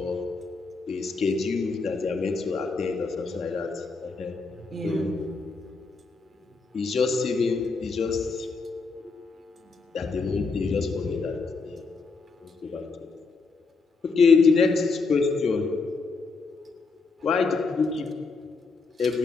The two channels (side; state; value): right; quieter; 4.3 dB